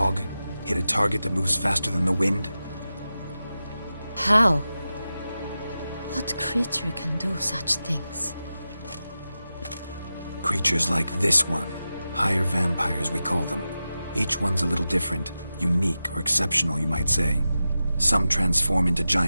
Hit a target that moves faster than the wind? How? What creature can do such things? Creatures like this one. Higher vampires, we call them. Each one's a little different. Unique or exceptional, you might say. Some transform into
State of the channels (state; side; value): inverted; both; correlation -0.93